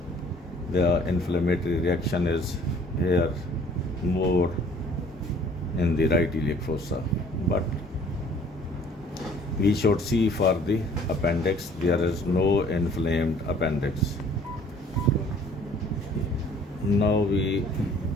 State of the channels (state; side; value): normal; both; correlation 0.55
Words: The inflammatory reaction is here more in the right iliac fossa, but we should see for the appendix, there is no inflamed appendix. Now we